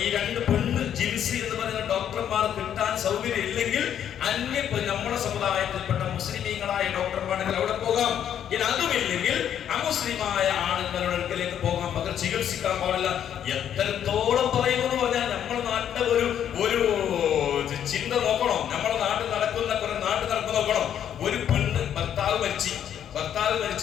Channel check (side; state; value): right; quieter; 9.6 dB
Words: ഈ 2 പെണ്ണ് ജിൻസി എന്ന് പറയുന്ന ഡോക്ടർമാർ കിട്ടാൻ സൗകര്യം ഇല്ലെങ്കിൽ നമ്മുടെ സമുദായത്തിൽപ്പെട്ട മുസ്ലിമീങ്ങളായ ഡോക്ടർമാണെങ്കിൽ അവിടെ പോകാം. ഇനി അതുമില്ലെങ്കിൽ അമുസ്ലിമായ ആണുങ്ങളുടെ അടുക്കലേക്ക് പോകാൻ, പകരം ചികിത്സിക്കാൻ പാടില്ല. എത്രത്തോളം പറയുമെന്ന് പറഞ്ഞാൽ നമ്മുടെ നാട്ടിലെ ഒരു ചിന്ത നോക്കണം. നമ്മുടെ നാട്ടിൽ നടക്കുന്ന നോക്കണം. ഒരു പെണ്ണ് ഭർത്താവ്